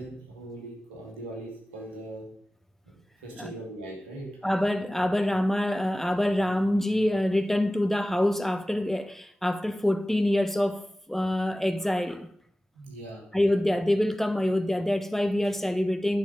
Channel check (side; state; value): both; normal; correlation 0.96